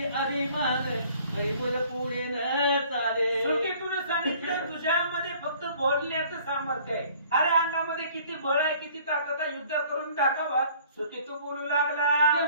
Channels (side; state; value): both; inverted; correlation -0.54